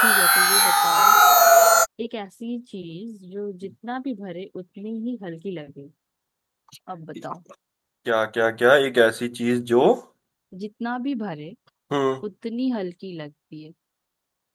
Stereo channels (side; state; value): both; identical; correlation 1.00